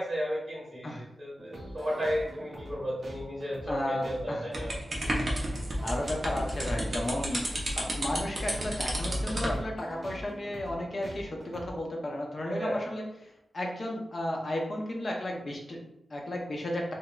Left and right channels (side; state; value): both; normal; correlation 0.93